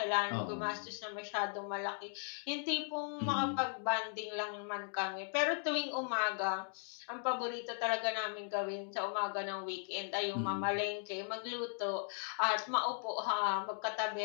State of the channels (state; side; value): silent; right; 53 dB below the other